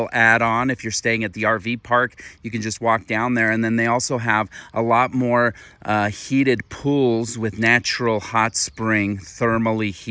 add-on. If you're staying at the RV park, you can just walk down there. And then they also have a lot more heated pools with natural hot spring thermally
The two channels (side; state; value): both; identical; correlation 1.00